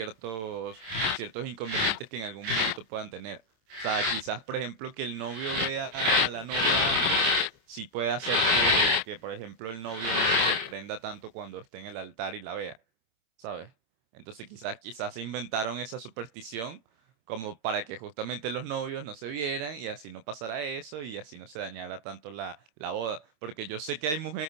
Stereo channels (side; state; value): left; late; 27 ms